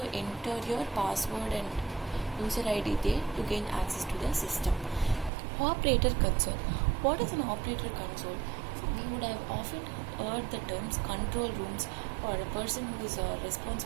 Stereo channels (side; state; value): left; drops out; at 5.3 s